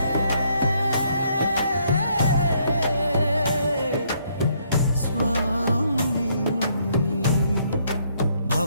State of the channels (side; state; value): both; inverted; correlation -0.70